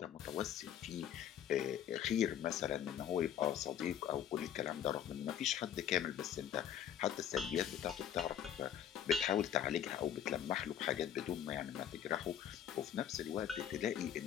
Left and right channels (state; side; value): quieter; right; 9.6 dB